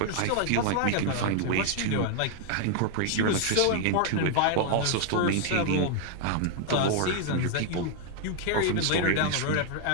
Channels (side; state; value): both; different; correlation 0.00